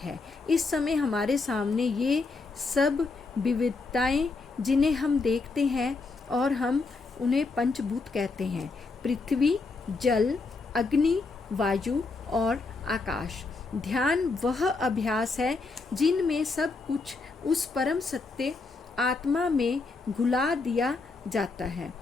इस समय हमारे सामने ये सब विविधताएं जिन्हें हम देखते हैं और हम उन्हें पंचभूत कहते हैं, पृथ्वी, जल, अग्नि, वायु और आकाश। ध्यान वह अभ्यास है जिनमें सब कुछ उस परम सत्य आत्मा में घुला दिया जाता है।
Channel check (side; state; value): right; quieter; 3.9 dB